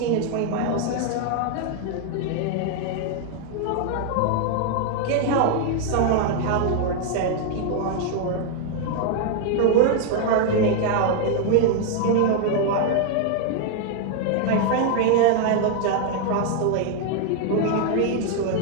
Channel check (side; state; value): both; different; correlation 0.00